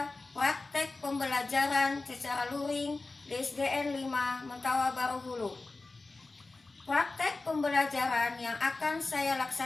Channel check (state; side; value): quieter; right; 3.4 dB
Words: praktek pembelajaran secara luring di SDN 5 Mentawa Baru Hulu. Praktek pembelajaran yang akan saya